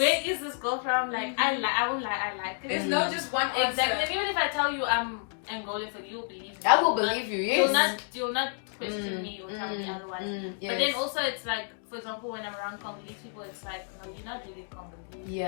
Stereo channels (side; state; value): right; silent; 58 dB below the other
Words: is this girl from? Like, I won't lie, I like it. There's not just one Exactly. answer. And even if I tell you I'm Angolan, for you, believe me. I will believe you, yes. You'll not question me or tell me otherwise. Yes. But then also, it's like, for example, when I'm around Congolese people, it's like, no, you're not really Congolese.